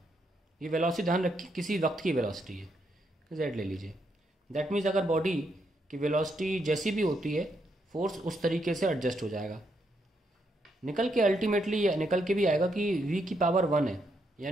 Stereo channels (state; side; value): normal; both; correlation 0.78